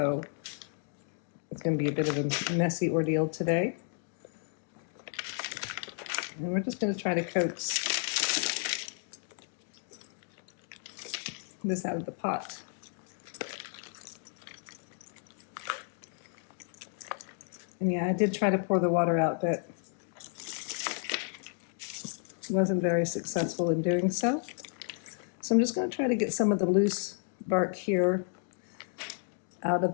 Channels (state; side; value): silent; right; 56 dB below the other